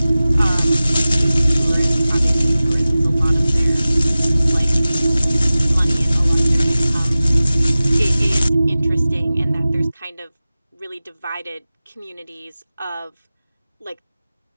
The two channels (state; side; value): inverted; both; correlation -0.97